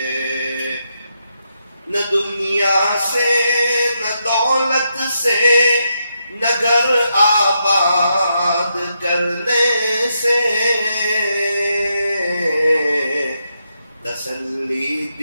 نہ دنیا سے نہ دولت سے نہ گھر آباد کرنے سے تسلی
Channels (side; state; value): both; inverted; correlation -0.82